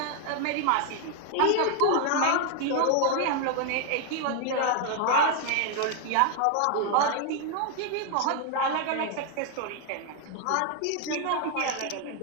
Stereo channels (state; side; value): different; both; correlation 0.00